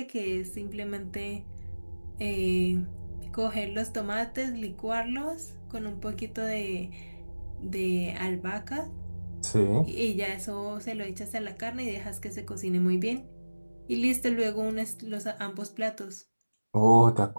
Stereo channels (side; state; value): both; inverted; correlation -1.00